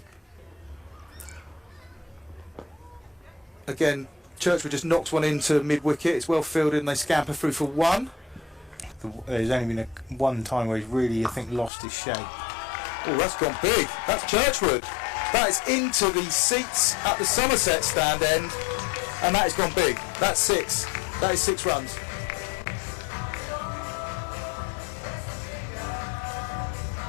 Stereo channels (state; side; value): drops out; right; at 11.7 s